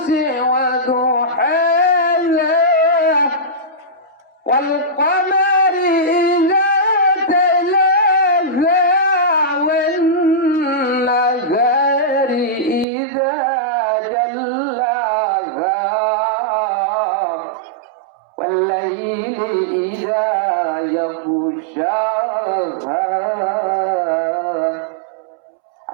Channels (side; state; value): left; drops out; at 12.9 s